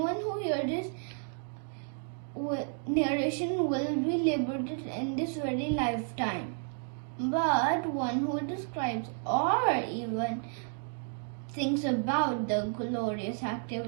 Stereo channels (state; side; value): silent; left; 56 dB below the other